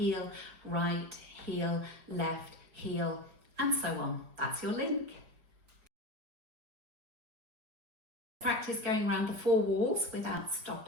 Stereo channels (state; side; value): late; left; 4.9 ms